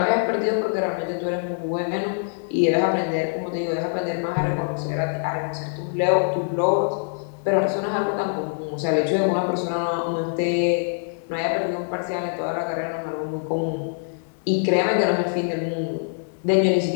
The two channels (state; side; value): silent; right; digital silence